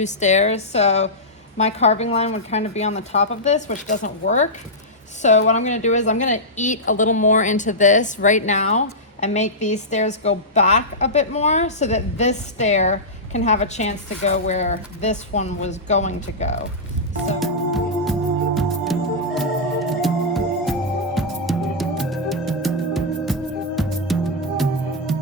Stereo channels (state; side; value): normal; both; correlation -0.11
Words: stairs, so my carving line would kind of be on the top of this, which doesn't work. So what I'm gonna do is I'm gonna eat a little more into this right now and make these stairs go back a bit more so that this stair can have a chance to go where this one was going to go.